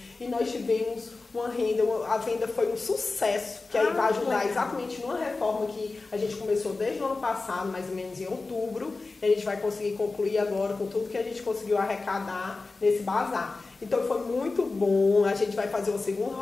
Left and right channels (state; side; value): quieter; right; 3.7 dB